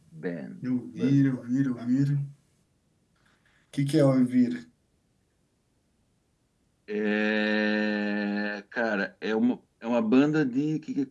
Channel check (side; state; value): both; identical; correlation 1.00